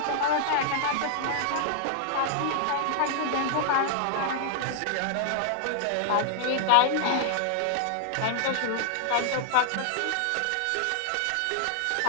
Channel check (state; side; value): different; both; correlation 0.00